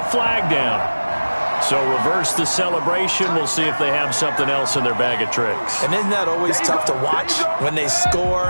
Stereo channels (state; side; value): inverted; both; correlation -1.00